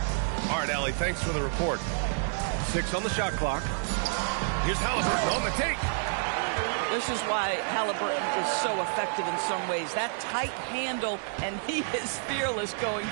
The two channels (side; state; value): left; silent; 55 dB below the other